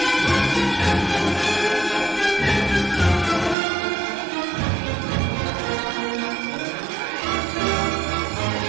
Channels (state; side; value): drops out; left; at 3.6 s